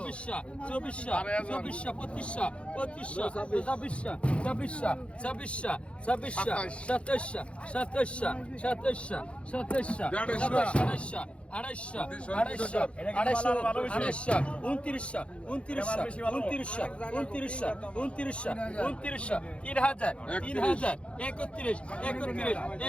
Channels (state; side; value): late; right; 0.060 ms